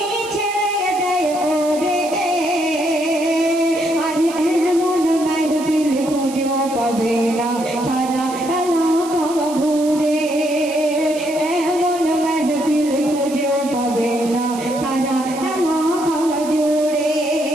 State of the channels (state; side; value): noise; right; hiss, 15 dB below the sound